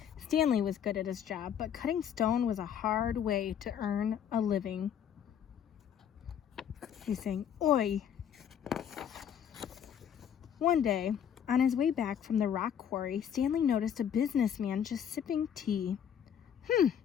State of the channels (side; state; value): right; quieter; 8.8 dB